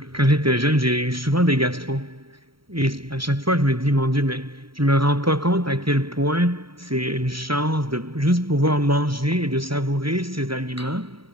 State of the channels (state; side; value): late; left; 0.74 ms